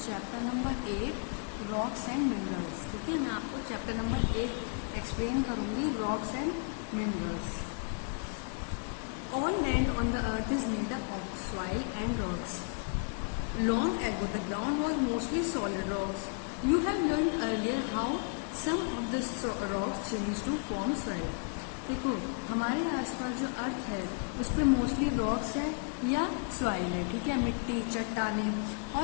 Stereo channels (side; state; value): right; quieter; 38.0 dB